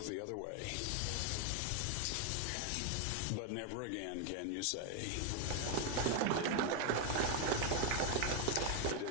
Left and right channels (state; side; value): different; both; correlation 0.01